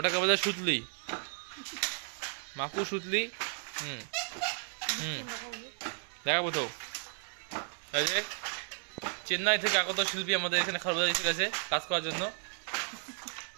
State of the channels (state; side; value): silent; left; 55 dB below the other